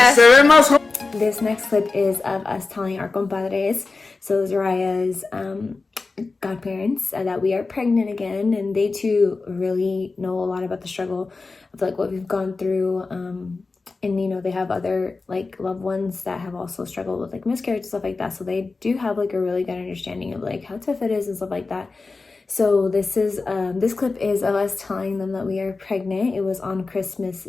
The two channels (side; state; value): right; quieter; 3.9 dB